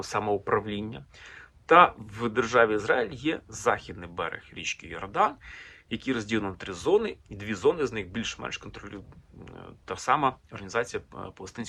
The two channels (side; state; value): both; identical; correlation 1.00